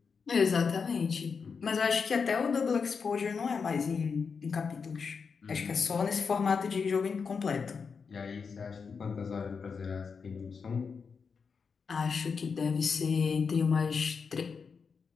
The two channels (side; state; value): right; quieter; 5.6 dB